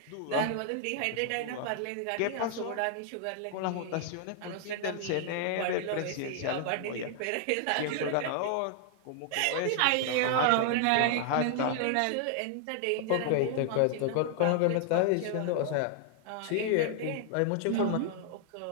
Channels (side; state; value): both; different; correlation 0.00